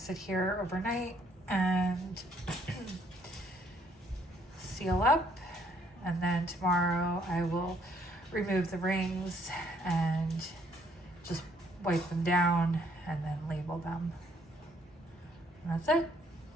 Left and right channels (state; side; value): normal; both; correlation 0.67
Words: sit here overnight and seal up, and then tomorrow I will remove the rings and just wipe them down and then label them. And that's it.